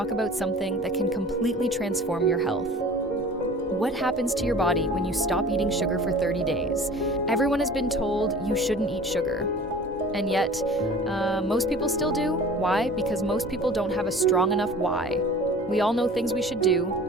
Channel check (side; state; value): both; normal; correlation 0.43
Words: about something that can completely transform your health. What happens to your body when you stop eating sugar for 30 days? Everyone has been told you shouldn't eat sugar. And yet, most people still do. Why? Because most people don't have a strong enough why. We all know things we should do: